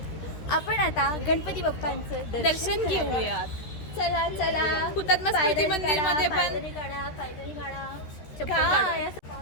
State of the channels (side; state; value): right; late; 13 ms